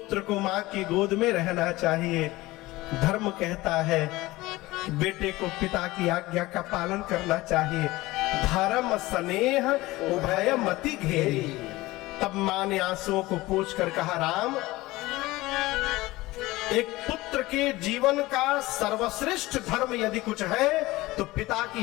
को मां की गोद में रहना चाहिए, धर्म कहता है बेटे को पिता की आज्ञा का पालन करना चाहिए। धर्म स्नेह उभय मति घेरी। तब मां ने आंसुओं को पोंछ कर कहा राम एक पुत्र के जीवन का सर्वश्रेष्ठ धर्म यदि कुछ है तो पिता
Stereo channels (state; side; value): quieter; right; 19.3 dB